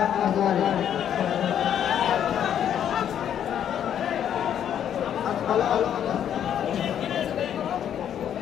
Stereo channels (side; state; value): right; quieter; 9.6 dB